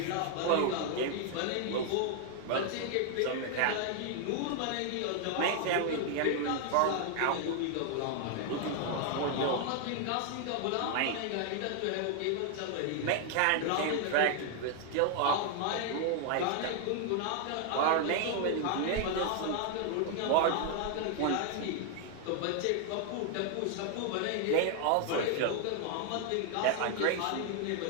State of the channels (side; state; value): both; different; correlation 0.00